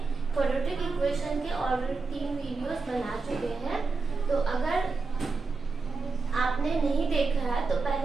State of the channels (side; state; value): left; quieter; 4.2 dB